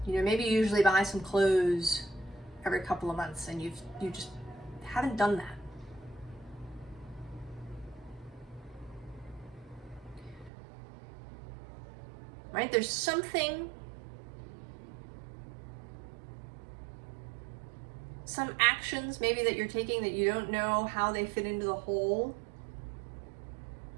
You know, maybe you usually buy some clothes every couple of months, and you just haven't done that. Right? There's something, some actions maybe that you're taking that you don't know how they fit into the whole,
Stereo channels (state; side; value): drops out; left; at 10.5 s